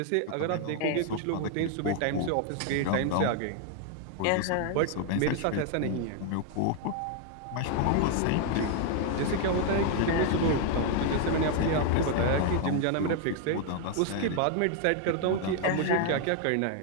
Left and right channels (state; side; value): different; both; correlation 0.00